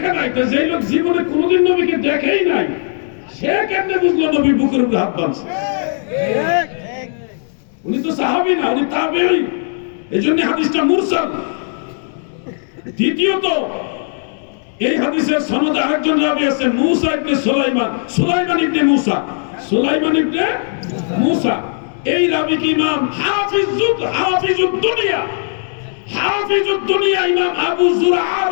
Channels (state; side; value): silent; right; digital silence